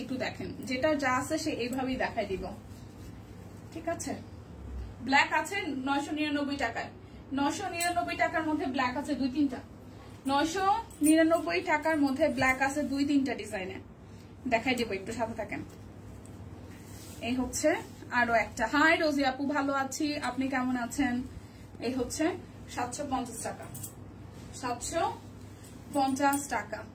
একটু দেখেন। যেটা যা আছে সে এইভাবেই দেখাই দিব, ঠিক আছে। ব্ল্যাক আছে 999 টাকায়, 999 টাকার মধ্যে ব্ল্যাক আছে 2-3টা, 999 টাকার মধ্যে ব্ল্যাক আছে 2-3টা ডিজাইনে, দেখাই দিব, একটু সাথে থাকেন। এই হচ্ছে আরো একটা। হাই রোজি আপু, ভালো আছি, আপনি কেমন আছেন? এই হচ্ছে 750 টাকা, 750 টাকা।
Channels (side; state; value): both; identical; correlation 1.00